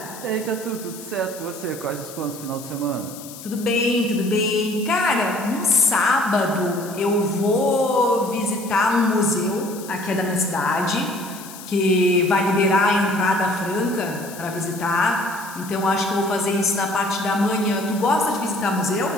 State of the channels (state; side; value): noise; left; hiss, 15 dB below the sound